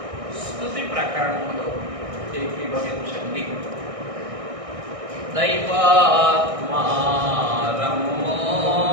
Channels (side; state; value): left; late; 1.6 ms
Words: స్తుతి ప్రకరణములో ఏకీభవించండి. దైవాత్మా రమ్మో